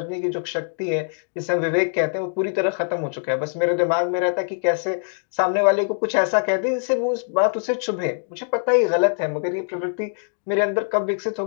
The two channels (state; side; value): silent; right; digital silence